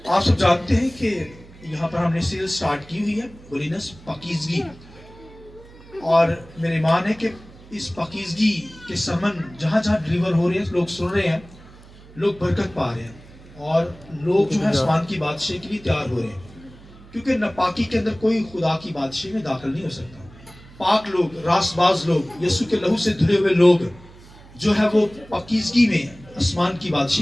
آپ سب جانتے ہیں کہ یہاں پر ہم نے سیریز سٹارٹ کی ہوئی ہے ہولینس پاکیزگی، اور میرے ایمان ہے کہ اس پاکیزگی کے سمن جہاں جہاں ڈلیور ہو رہے ہیں، لوگ سن رہے ہیں، لوگ برکت پا رہے ہیں، اور لوگ جو ہے آسمان کی بادشاہی کے لیے تیار ہو رہے ہیں، کیونکہ ناپاکی کے اندر کوئی خدا کی بادشاہی میں داخل نہیں ہو سکتا۔ پاک لوگ، راست باز لوگ، یسوع کے لہو سے دھلے ہوئے لوگ جو ہے وہ پاکیزگی میں آسمان کی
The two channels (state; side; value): noise; right; hum, 21 dB below the sound